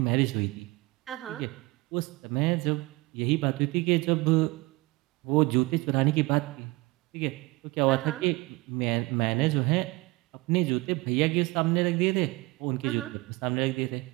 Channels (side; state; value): left; quieter; 23.0 dB